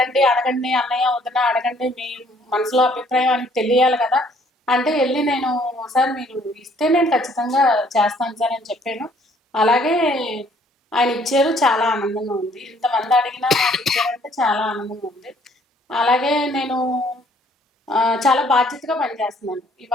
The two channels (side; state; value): both; normal; correlation 0.62